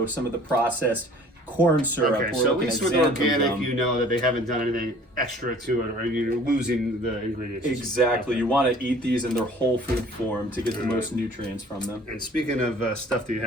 some of the processed corn syrup. Okay, We're so at looking least at with xanthan organic, gum. you know that they haven't done anything extra to it, or you're losing the ingredients. Exactly. You want to eat these in their whole food form to get the most nutrients from them. And speaking of stuff that you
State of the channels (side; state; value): both; normal; correlation 0.51